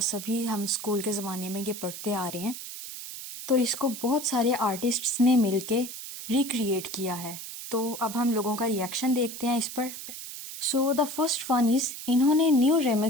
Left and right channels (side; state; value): right; noise; hiss, 10 dB below the sound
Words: हम स्कूल के ज़माने में ये पढ़ते आ रहे हैं। तो इसको बहुत सारे आर्टिस्ट्स ने मिलके रिक्रिएट किया है। तो अब हम लोगों का रिएक्शन देखते हैं इस पर। So the first one is, इन्होंने न्यू